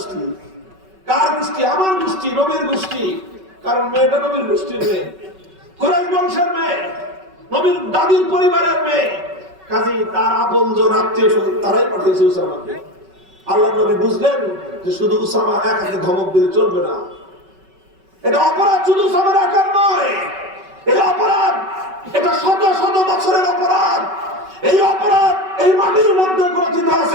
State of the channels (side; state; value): left; late; 5.3 ms